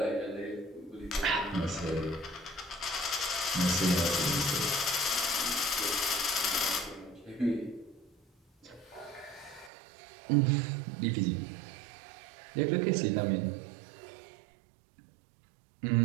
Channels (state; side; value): drops out; left; at 9.7 s